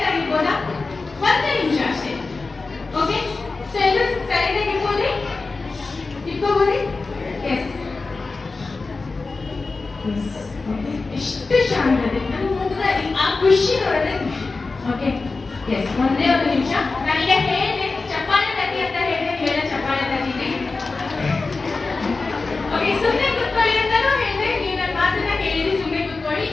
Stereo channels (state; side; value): quieter; right; 3.9 dB